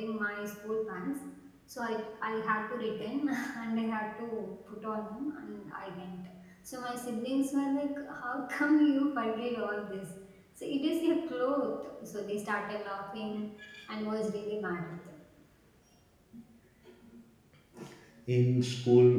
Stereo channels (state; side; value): identical; both; correlation 1.00